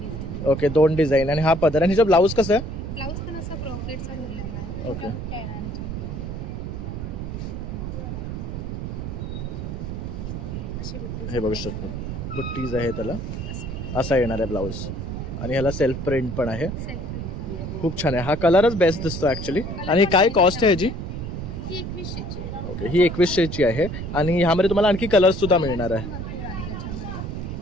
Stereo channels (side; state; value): right; noise; rumble, 5 dB below the sound